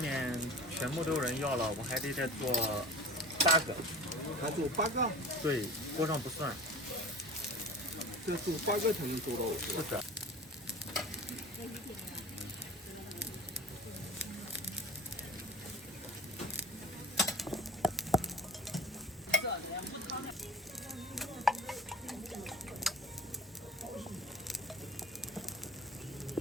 面全部都有人要了，我还得再做8个。还做8个？对，锅上不算。再做8个才能做到。是的。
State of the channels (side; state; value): both; normal; correlation 0.39